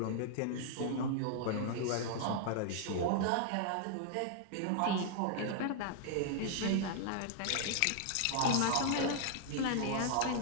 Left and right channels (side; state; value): both; different; correlation 0.00